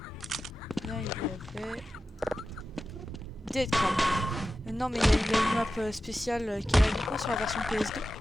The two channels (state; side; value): normal; both; correlation 0.92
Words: bien il y avait Dead Crab. Non mais il y a une map spéciale qui est là uniquement sur la version PS2.